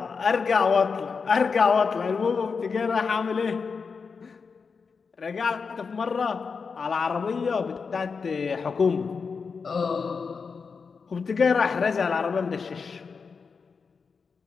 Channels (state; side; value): quieter; right; 5.3 dB